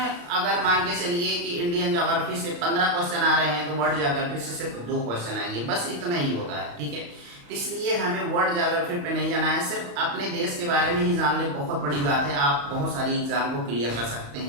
मान के चलिए कि इंडियन ज्योग्राफी से 15 क्वेश्चन आ रहे हैं, तो वर्ल्ड ज्योग्राफी से सिर्फ 2 क्वेश्चन आएंगे, बस इतना ही होता है, ठीक है। इसलिए हमें वर्ल्ड ज्योग्राफी पे नहीं जाना है, सिर्फ अपने देश के बारे में ही जान ले, बहुत बड़ी बात है। आप बहुत सारी एग्जाम को क्लियर कर सकते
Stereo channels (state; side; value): late; left; 35 ms